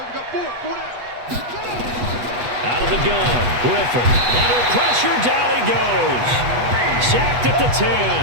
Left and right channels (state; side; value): late; left; 8.2 ms